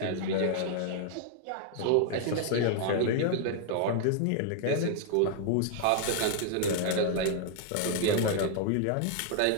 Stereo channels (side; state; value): both; different; correlation 0.00